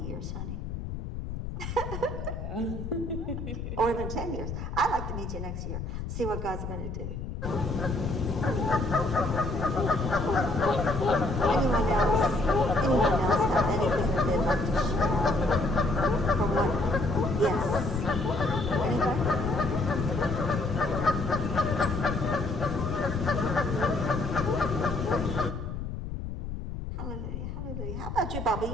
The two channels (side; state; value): left; noise; rumble, 6 dB below the sound